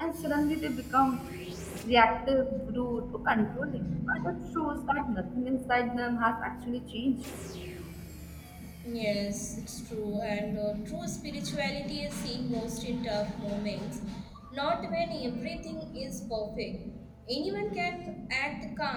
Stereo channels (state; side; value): identical; both; correlation 1.00